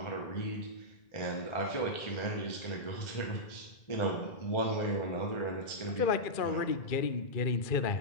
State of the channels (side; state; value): right; late; 2.3 ms